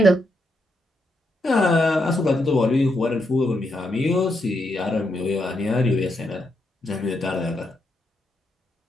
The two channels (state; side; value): normal; both; correlation 0.81